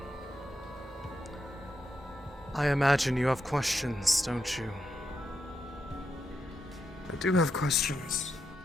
I imagine you have questions, don't you? I do have questions.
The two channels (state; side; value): normal; both; correlation 0.84